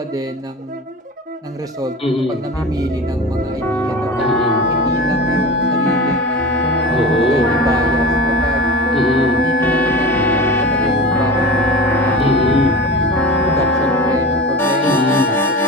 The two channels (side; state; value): both; normal; correlation 0.31